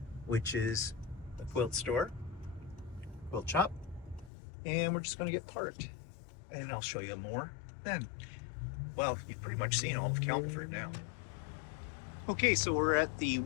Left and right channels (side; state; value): right; drops out; at 4.3 s